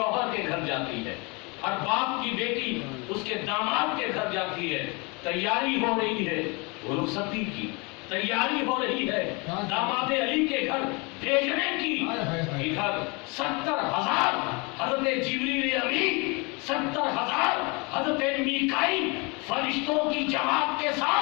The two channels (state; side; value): quieter; right; 29.1 dB